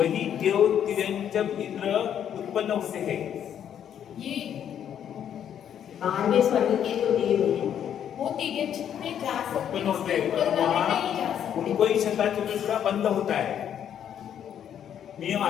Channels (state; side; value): quieter; right; 9.4 dB